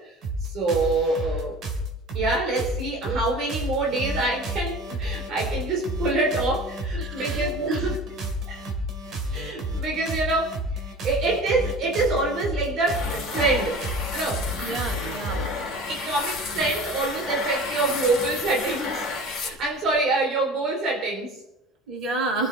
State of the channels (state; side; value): normal; both; correlation 0.39